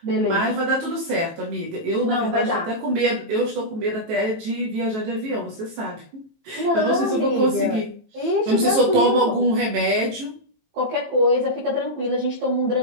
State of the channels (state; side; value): late; left; 18 ms